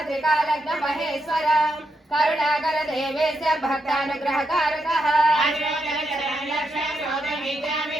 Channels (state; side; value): normal; both; correlation 0.82